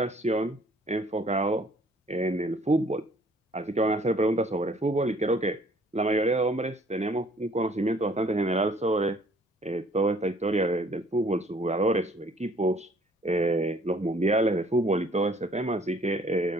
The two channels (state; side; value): normal; both; correlation 0.58